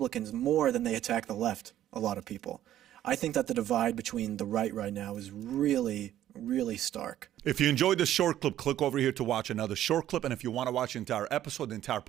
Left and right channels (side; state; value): left; quieter; 12.3 dB